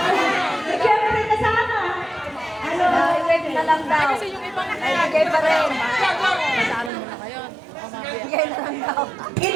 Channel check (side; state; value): left; drops out; at 6.9 s